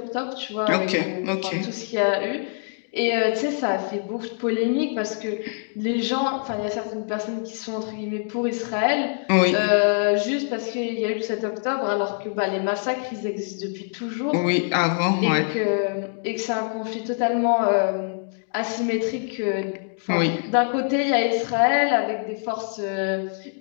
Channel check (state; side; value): silent; right; 61 dB below the other